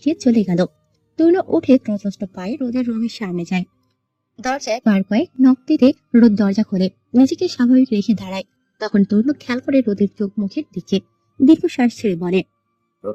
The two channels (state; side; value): identical; both; correlation 1.00